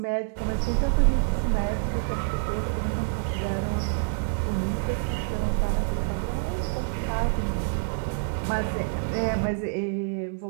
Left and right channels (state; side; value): silent; left; digital silence